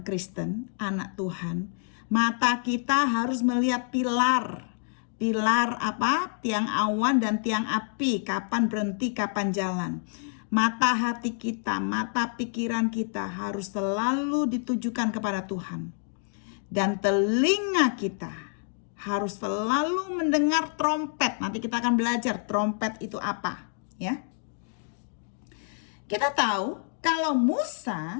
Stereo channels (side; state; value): right; silent; 60 dB below the other